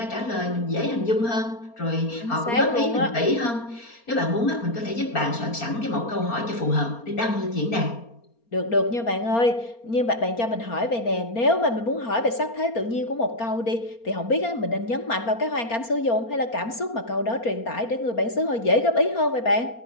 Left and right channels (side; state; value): right; late; 4.3 ms